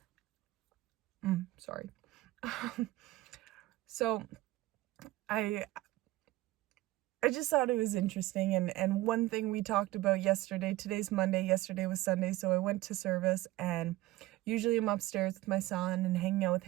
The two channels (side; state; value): left; quieter; 17.7 dB